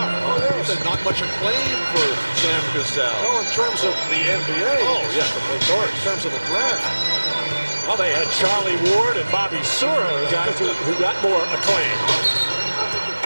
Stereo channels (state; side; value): inverted; both; correlation -1.00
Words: Oh, yes. You said not much acclaim for Sam Cassell. No, in terms of the NBA. Oh, yeah, of course. In terms of the draft. Well, they had Charlie Ward and Bobby Sura, guys who got more acclaim.